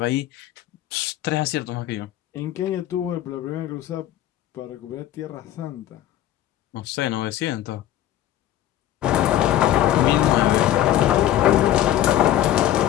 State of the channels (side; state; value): right; quieter; 12.5 dB